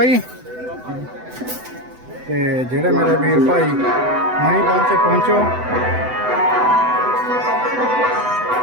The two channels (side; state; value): left; late; 7.9 ms